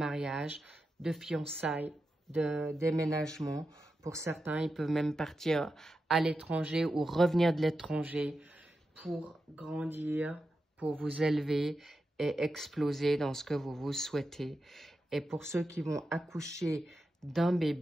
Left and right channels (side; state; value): both; normal; correlation 0.89